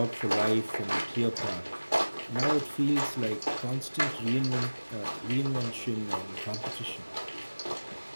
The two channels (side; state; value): both; inverted; correlation -1.00